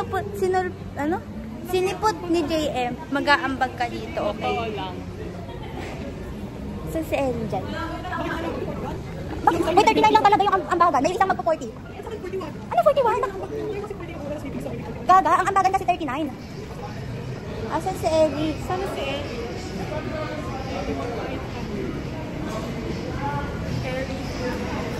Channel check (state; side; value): identical; both; correlation 1.00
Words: ni JM, mag-aambag ka dito, okay? Saan si Ellie dyan? May 39 lang talaga yung ambagan. May isang magpo-40. Ano 41? Gaga, ang ambagan kasi 39. Asan si Ellie? Saan si Ellie?